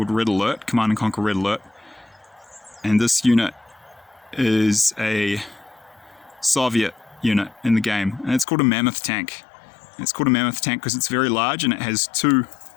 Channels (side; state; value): right; drops out; at 8.5 s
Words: Red Alert, Command and Conquer Red Alert. And this unit is a Soviet unit in the game, and it's called a Mammoth Tank. It's called a Mammoth Tank because it's very large, and it has